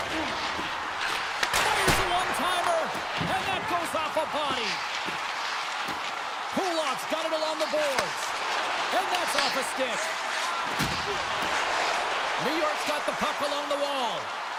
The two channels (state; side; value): identical; both; correlation 1.00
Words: Fires a one-timer, and that goes off a body. Pulov's got it along the boards, and that's off a stick. New York's got the puck along the wall.